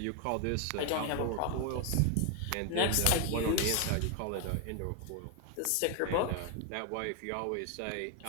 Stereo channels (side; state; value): both; different; correlation 0.01